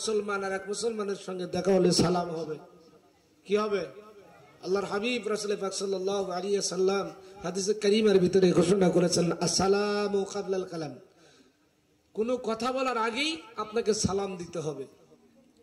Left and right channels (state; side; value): identical; both; correlation 1.00